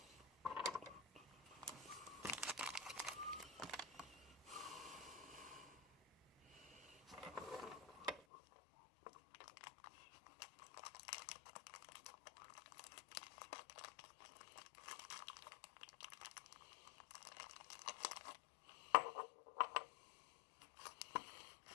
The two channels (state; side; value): drops out; right; at 8.2 s